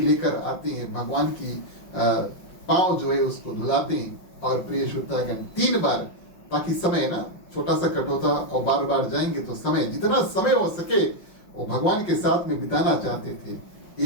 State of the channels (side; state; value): right; late; 5.6 ms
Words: आते हैं, भगवान की पांव जो है उसको धुलाते हैं। और प्रिय श्रोतागण 3 बार, ताकि समय ना, छोटा सा कटोता और बार बार जाएंगे तो समय, जितना समय हो सके वो भगवान के साथ में बिताना चाहते थे।